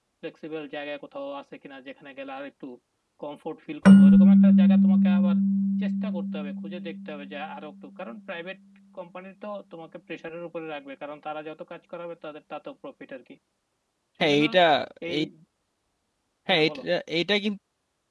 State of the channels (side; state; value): both; identical; correlation 1.00